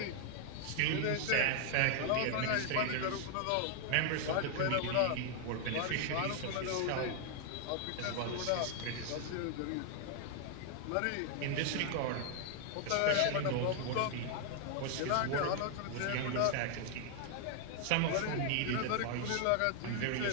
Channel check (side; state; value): both; different; correlation 0.00